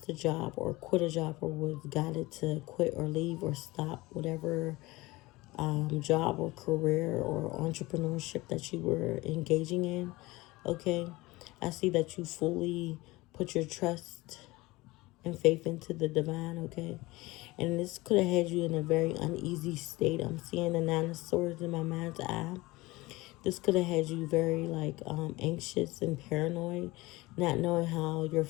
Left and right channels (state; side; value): quieter; right; 20.9 dB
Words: a job or quit a job or was guided to quit or leave or stop whatever job or career or entrepreneurship that you were engaging in. Okay, I see that you fully put your trust and faith into the divine. Okay, and this could have had you in a very uneasy state. I'm seeing the Nine of Swords in my mind's eye. This could have had you very anxious and paranoid, not knowing how your